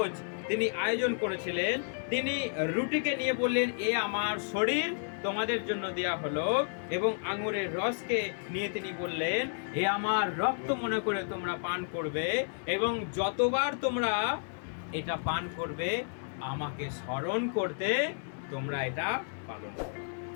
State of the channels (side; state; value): right; silent; digital silence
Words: তিনি আয়োজন করেছিলেন। তিনি রুটিকে নিয়ে বললেন, এ আমার শরীর তোমাদের জন্য দেয়া হলো, এবং আঙুরের রসকে নিয়ে তিনি বললেন, এ আমার রক্ত মনে করে তোমরা পান করবে, এবং যতবার তোমরা এটা পান করবে আমাকে স্মরণ করতে তোমরা এটা পালন করবে।